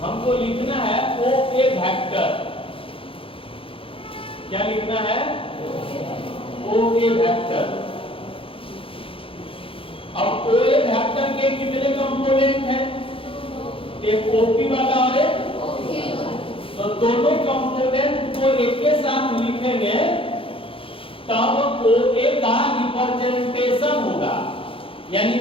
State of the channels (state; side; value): late; right; 0.26 ms